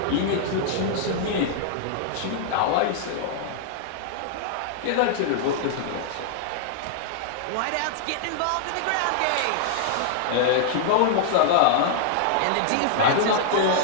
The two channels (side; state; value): both; different; correlation -0.01